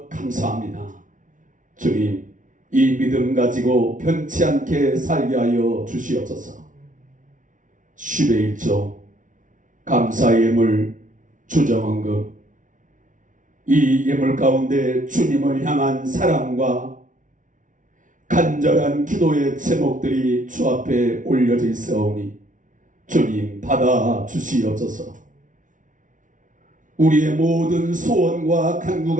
감사합니다. 주님, 이 믿음 가지고 변치 않게 살게 하여 주시옵소서. 10의 1조 감사의 예물 주정헌금, 이 예물 가운데 주님을 향한 사랑과 간절한 기도의 제목들이 주 앞에 올려져 있사오니 주님 받아 주시옵소서. 우리의 모든 소원과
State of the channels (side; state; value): left; late; 0.38 ms